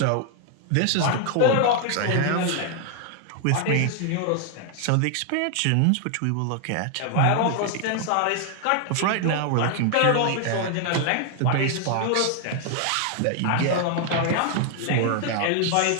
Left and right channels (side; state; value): both; different; correlation 0.00